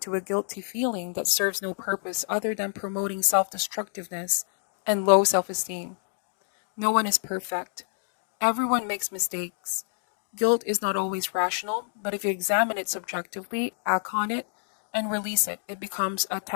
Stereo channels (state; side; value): silent; right; digital silence